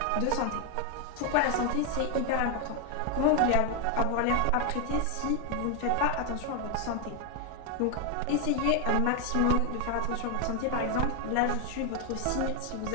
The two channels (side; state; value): both; different; correlation 0.01